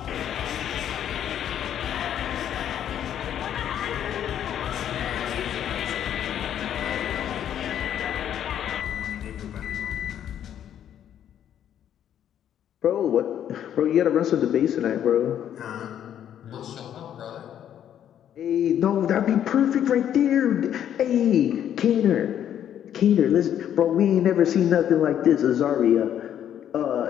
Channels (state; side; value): quieter; right; 10.1 dB